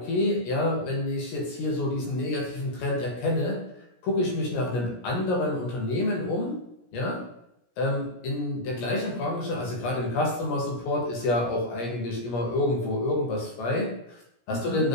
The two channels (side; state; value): right; late; 17 ms